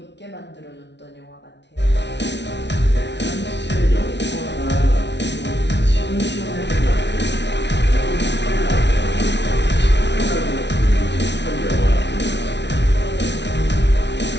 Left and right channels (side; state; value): right; late; 0.51 ms